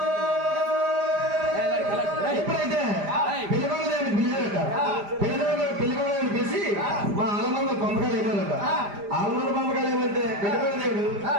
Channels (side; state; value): left; late; 5.0 ms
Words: ఎప్పుడైతే పిల్లవాళ్ళని పిలిచారట పిల్లవాళ్ళని పిలిచి మా ఆలమంద పంపకాలు ఏమన్నారట ఆలమంద పంపకాలు ఏమంటే పిల్లవాళ్ళ దేవుడు